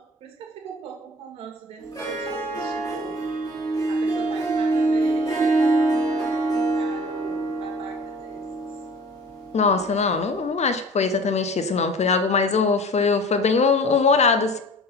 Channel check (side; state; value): both; normal; correlation 0.44